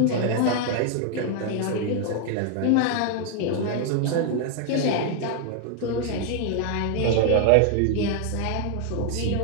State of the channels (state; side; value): different; both; correlation 0.00